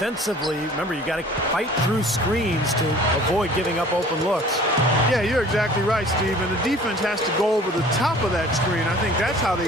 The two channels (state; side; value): normal; both; correlation 0.49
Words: remember, you got to fight through screens to avoid giving up open looks. Yeah, you're exactly right, Steve. And the defense has to go over the top of that screen. I think that's how they